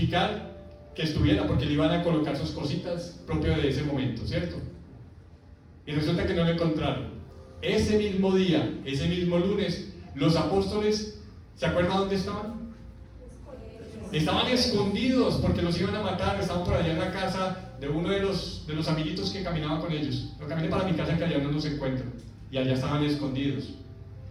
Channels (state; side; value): identical; both; correlation 1.00